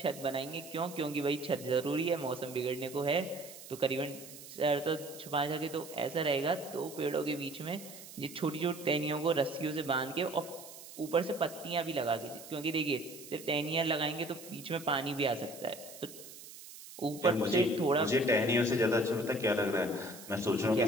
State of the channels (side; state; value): right; noise; hiss, 15 dB below the sound